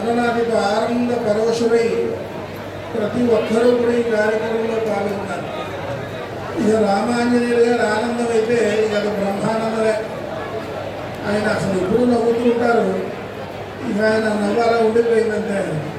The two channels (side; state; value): both; identical; correlation 1.00